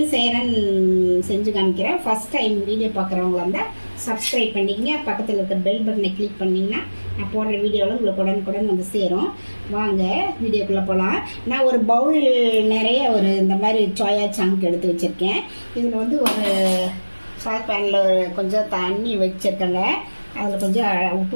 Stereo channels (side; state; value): both; inverted; correlation -1.00